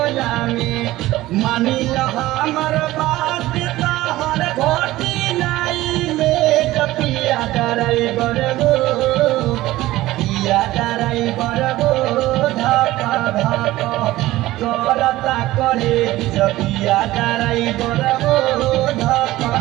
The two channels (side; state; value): left; quieter; 16.9 dB